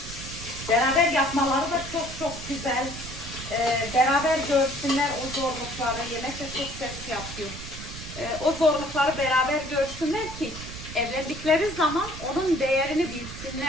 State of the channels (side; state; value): right; noise; rumble, 11 dB below the sound